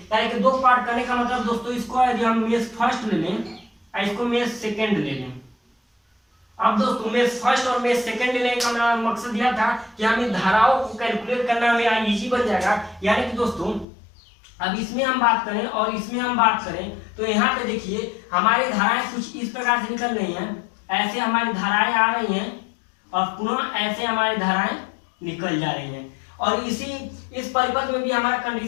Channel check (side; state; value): right; drops out; at 13.9 s